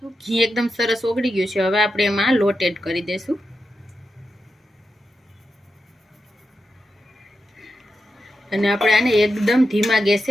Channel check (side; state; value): both; normal; correlation 0.88